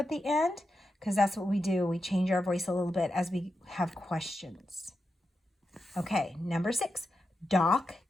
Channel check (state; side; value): normal; both; correlation 0.88